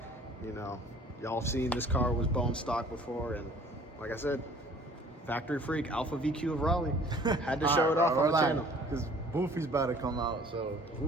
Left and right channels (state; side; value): normal; both; correlation 0.52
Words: You know, y'all have seen this car was bone stock before, and like I said, factory freak, Alpha VQ of Raleigh. Had to show it off on the channel. Because Boofy's about to come out, so